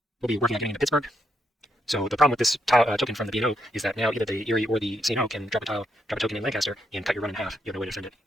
will be working on getting into Pittsburgh. So the problem with this token from the B&O is that now either the Erie or the CNO can drop a token in Lancaster and cut your run in half. You have no way to defend it.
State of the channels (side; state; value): both; normal; correlation 0.79